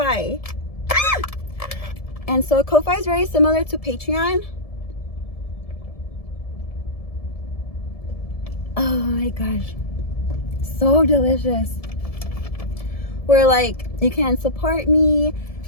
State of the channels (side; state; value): right; late; 1.7 ms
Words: And so Ko-Fi is very similar to Patreon. Oh my gosh, so delicious. Where like you can support me,